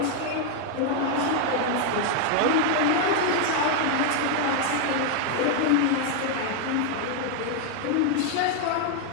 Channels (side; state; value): both; different; correlation 0.00